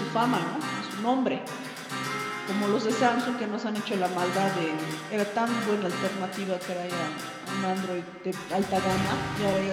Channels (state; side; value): identical; both; correlation 1.00